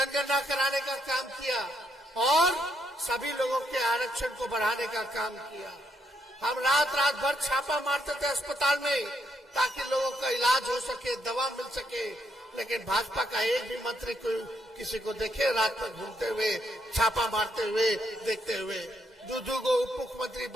कराने का काम किया और सभी लोगों के आरक्षण को बढ़ाने का काम किया। हम रात भर छापा मारते थे अस्पताल में, ताकि लोगों का इलाज हो सके, दवा मिल सके। लेकिन भाजपा का एक भी मंत्री किसी को देखे रात में घूमते हुए, छापा मारते हुए, देखते हुए? दूधू को उप मुख्यमंत्री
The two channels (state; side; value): normal; both; correlation 0.76